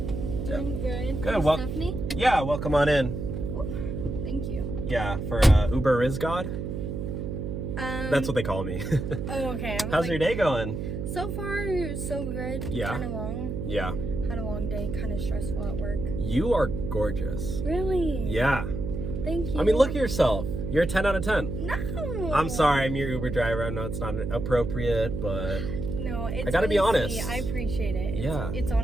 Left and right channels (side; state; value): right; noise; hum, 4 dB below the sound